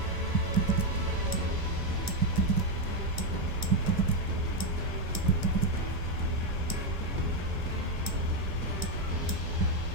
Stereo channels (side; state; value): left; late; 1.9 ms